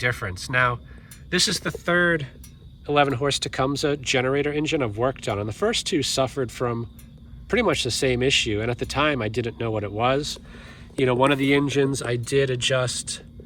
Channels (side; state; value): both; identical; correlation 1.00